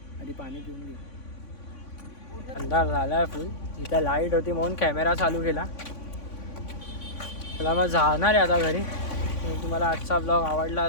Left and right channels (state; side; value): late; right; 3.5 ms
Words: आधी पाणी पिऊन घेऊ. अंधार झाला आहे फुल. इथं लाईट होती म्हणून कॅमेरा चालू केला. मला मग जाणार आहे आता घरी. तुम्हाला आजचा ब्लॉग आवडला